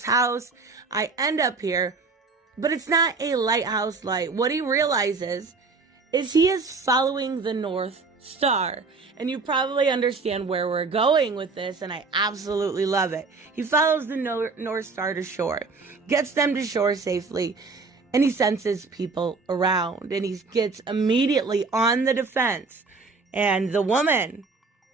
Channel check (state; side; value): quieter; left; 4.2 dB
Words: house. I end up here, but it's not a lighthouse light. What he realizes is he is following the North Star. And you probably understand where we're going with this, and I absolutely love it. He follows the North Star to shore, gets them to shore safely, and he senses people around, and he gets immediately on the defense. And the woman,